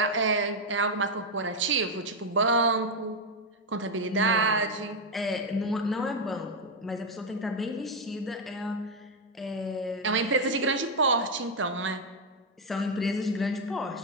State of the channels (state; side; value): normal; both; correlation 0.04